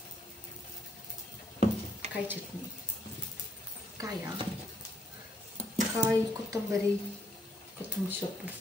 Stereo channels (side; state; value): both; normal; correlation 0.72